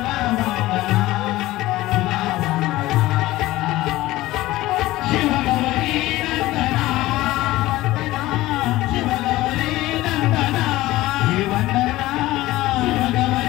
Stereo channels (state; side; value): quieter; right; 17.3 dB